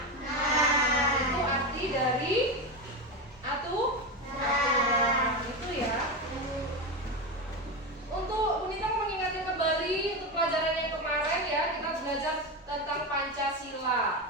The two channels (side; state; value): both; normal; correlation 0.17